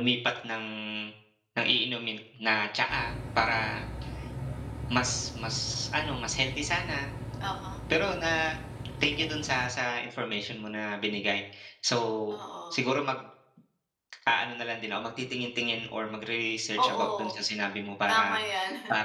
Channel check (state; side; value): identical; both; correlation 1.00